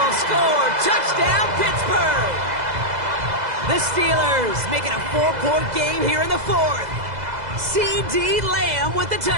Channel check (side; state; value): left; late; 2.0 ms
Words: score. Touchdown, Pittsburgh! The Steelers making a 4-point game here in the 4th. C.D. Lamb with the